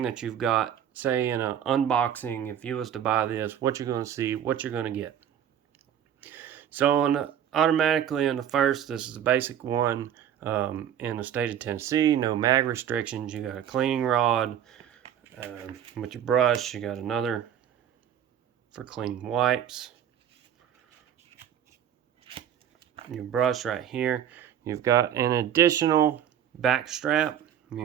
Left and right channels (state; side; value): quieter; left; 9.7 dB